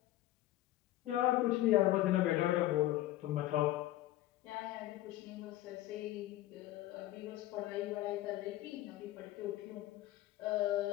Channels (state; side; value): quieter; right; 15.3 dB